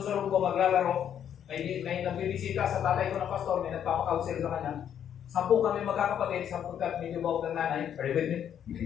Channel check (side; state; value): right; quieter; 9.3 dB